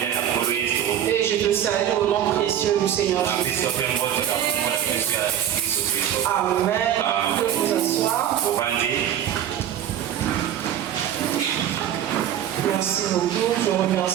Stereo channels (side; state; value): left; quieter; 10.4 dB